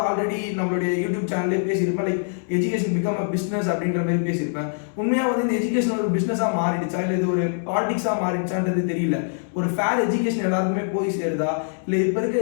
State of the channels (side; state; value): right; silent; digital silence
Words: ஆல்ரெடி நம்மளுடைய யூடியூப் சேனல்லே பேசியிருப்பேன். Like education become a business அப்படின்ற மாதிரி பேசியிருப்பேன். உண்மையாக வந்து இந்த எஜுகேஷன் ஒரு பிஸ்னஸாக மாறிடுச்சா இல்லை இது ஒரு பாலிடிக்ஸாக மாறிடுச்சான்றது தெரியல. ஒரு ஃபேர் எஜுகேஷன் எல்லாருக்குமே போய் சேருதா இல்லை இப்போ